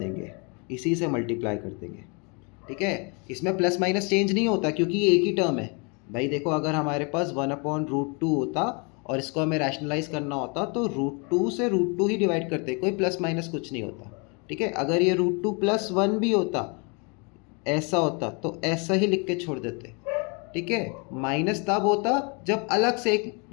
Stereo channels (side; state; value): right; quieter; 33.2 dB